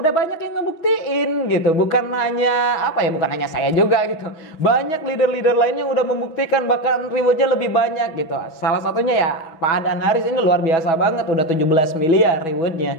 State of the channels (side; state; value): right; late; 6.2 ms